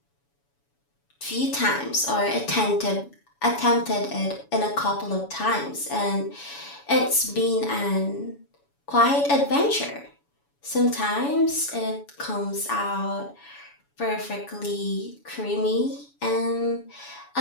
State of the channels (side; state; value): right; late; 7.1 ms